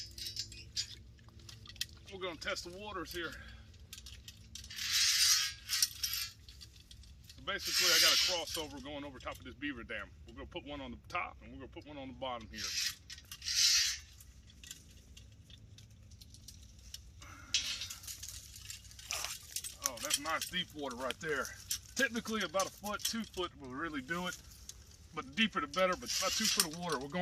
We're gonna test the waters here. So basically I got a crossover going over top of this beaver dam. We're gonna put one on the top and we're gonna put one on the bottom here. Oh, that's nice deep water right there. Typically about a foot, 2 foot will really do it. But the deeper the better, but about 2 foot of water. We're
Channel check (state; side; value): identical; both; correlation 1.00